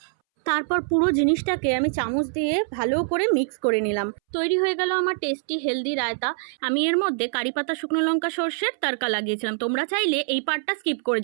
তারপর পুরো জিনিসটাকে আমি চামচ দিয়ে ভালো করে মিক্স করে নিলাম। তৈরি হয়ে গেল আমার টেস্টি হেলদি রায়তা। আমি এর মধ্যে কারি পাতা, শুকনো লঙ্কা, সর্ষের তড়কা লাগিয়েছিলাম। তোমরা চাইলে এই পার্টটা স্কিপ করে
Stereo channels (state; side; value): silent; left; 62 dB below the other